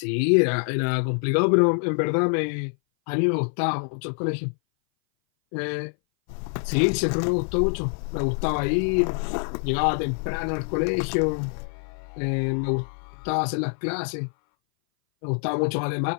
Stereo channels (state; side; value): silent; right; 59 dB below the other